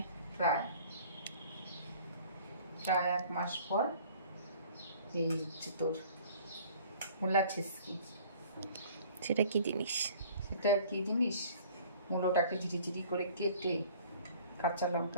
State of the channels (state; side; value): inverted; both; correlation -0.51